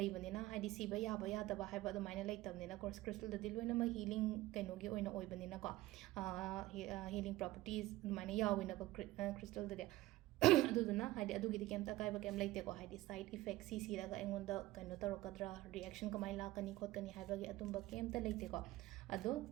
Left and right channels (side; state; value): left; quieter; 17.1 dB